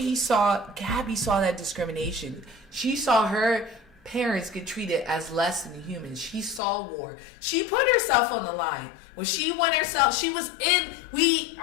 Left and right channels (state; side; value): drops out; right; at 6.6 s